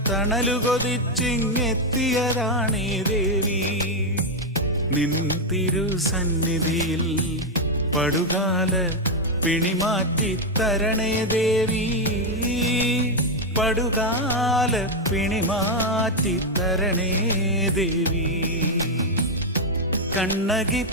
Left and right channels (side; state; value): both; normal; correlation 0.03